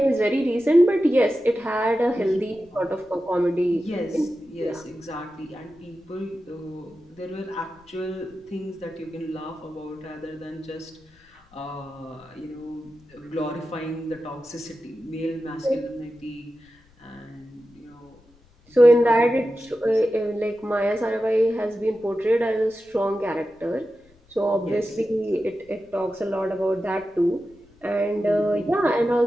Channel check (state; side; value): noise; left; rumble, 30 dB below the sound